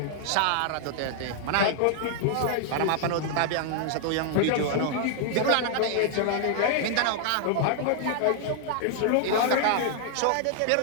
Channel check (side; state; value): both; different; correlation 0.00